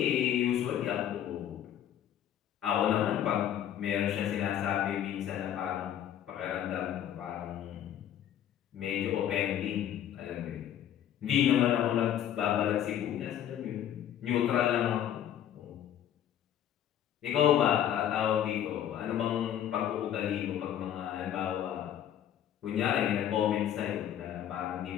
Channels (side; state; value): right; quieter; 10.5 dB